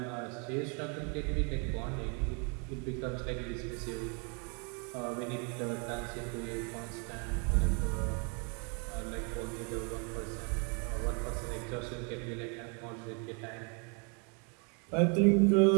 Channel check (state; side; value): quieter; left; 36.0 dB